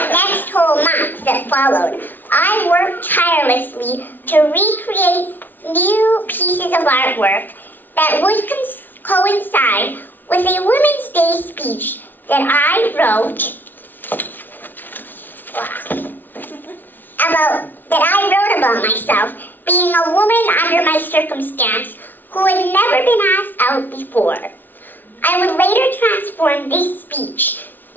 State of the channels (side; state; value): right; late; 0.089 ms